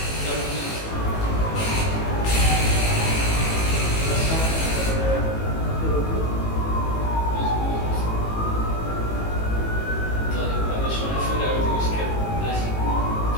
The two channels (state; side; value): late; right; 18 ms